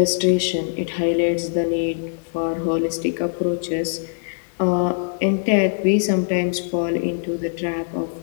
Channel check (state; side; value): silent; right; digital silence